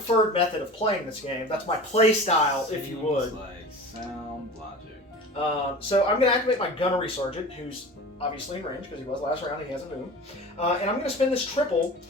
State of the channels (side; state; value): both; normal; correlation 0.36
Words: method of playing this game. That's my play style, if you would. Like sound logic. So I'm going to activate my Gunnery Sergeant, who's obviously in range because he was last round. He hasn't moved. And I'm going to spin this triple,